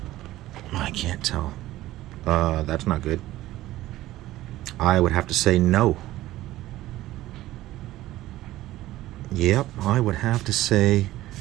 I can't tell. That's not good. I would have to say no. Yep, I would have to say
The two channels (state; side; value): quieter; left; 15.8 dB